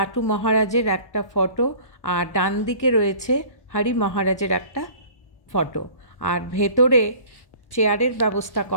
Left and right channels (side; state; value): right; late; 1.1 ms